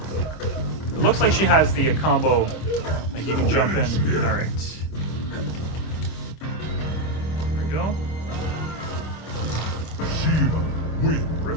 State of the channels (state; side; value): late; right; 25 ms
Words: It looks like she has the combo, like you can jump in. Alright. There we go. Shiva wins.